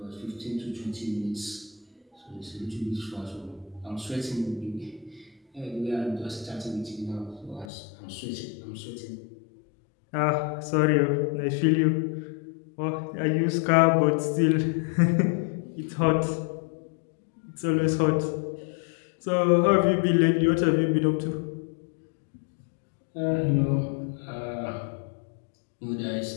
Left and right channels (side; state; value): right; drops out; at 7.7 s